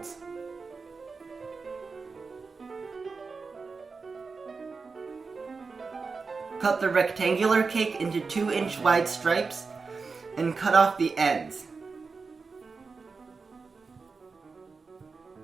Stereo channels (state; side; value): quieter; left; 4.6 dB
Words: Cut the rectangular cake into 2-inch wide stripes and cut off the ends.